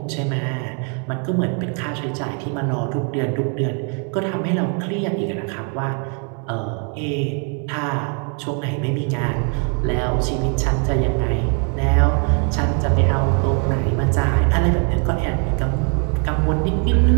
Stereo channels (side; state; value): left; quieter; 39.8 dB